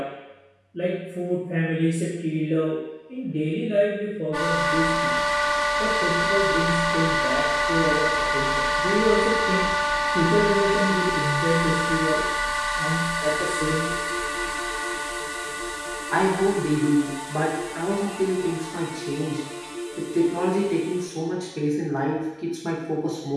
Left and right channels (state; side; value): identical; both; correlation 1.00